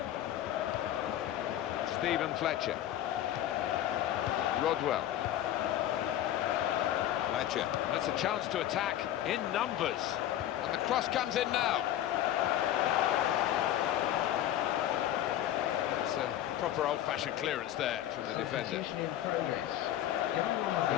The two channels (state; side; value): quieter; right; 12.2 dB